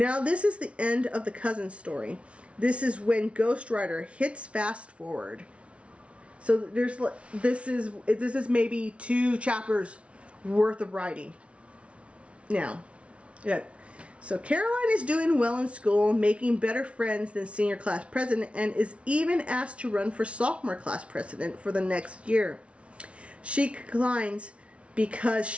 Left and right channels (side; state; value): left; late; 0.061 ms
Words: this is the end of the cousin story. This is when Ghost Rider hits fast forward. So this is maybe 2 chapters worth of writing. Now, yeah. So Caroline is doing well in school, making better friends than senior class president, and is even asked to run for sophomore class president for the next year. She declines because